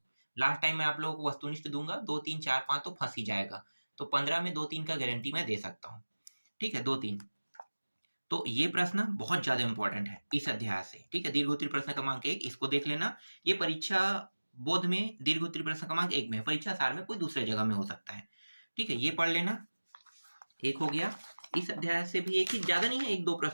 लास्ट टाइम मैं आप लोगों को वस्तुनिष्ठ दूंगा, 2-3 4-5 तो फंस ही जाएगा। तो 15 में 2-3 का गारंटी मैं दे सकता हूँ। ठीक है, 2-3। तो ये प्रश्न बहुत ज्यादा इंपॉर्टेंट है इस अध्याय से। ठीक है, दीर्घोत्तरी प्रश्न क्रमांक 1 इसको देख लेना। ये परीक्षा बोध में दीर्घोत्तरी प्रश्न क्रमांक 1 में, परीक्षा सार में कोई दूसरे जगह में हो सकता है। ठीक है, ये पढ़ लेना। एक हो गया। इस अध्याय से भी एक ही, ज्यादा नहीं है, 1-2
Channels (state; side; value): inverted; both; correlation -1.00